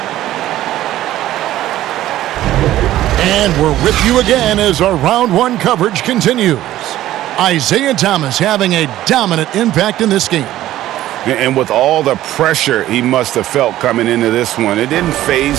And we're with you again as our round 1 coverage continues. Isaiah Thomas having a dominant impact in this game. And with all the pressure he must have felt coming into this one, it didn't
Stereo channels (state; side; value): quieter; left; 14.1 dB